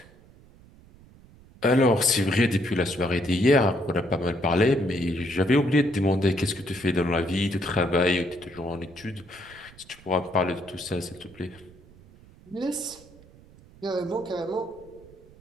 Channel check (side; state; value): right; noise; rumble, 24 dB below the sound